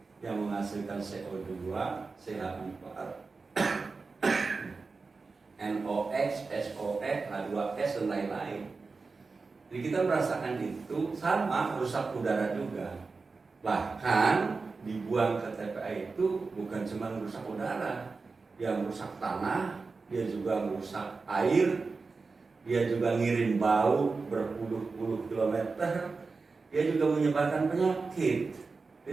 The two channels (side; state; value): left; quieter; 4.2 dB